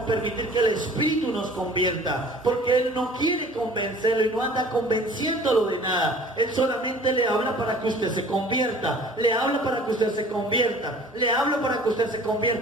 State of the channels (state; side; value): normal; both; correlation 0.48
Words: que el Espíritu nos convierta, porque Él no quiere convencerlo y no anda convenciéndolo de nada. Él solamente le habla para que usted se convierta, le habla para que usted se convierta, le habla para que usted se